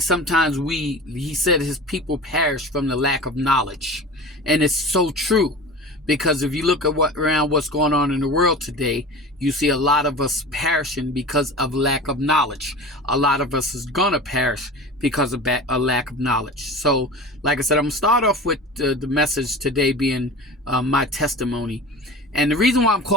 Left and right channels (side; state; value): both; normal; correlation 0.34